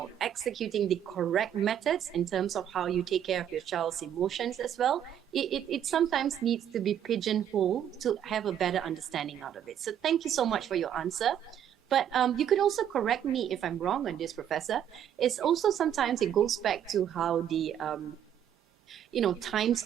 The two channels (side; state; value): left; quieter; 9.8 dB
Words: executing the correct methods in terms of how you take care of your child's emotions as well, it sometimes needs to be pigeonholed to have a better understanding out of it. So thank you so much for your answer. But you could also correct me if I'm wrong on this, Professor. It's also sometimes it goes back to how the times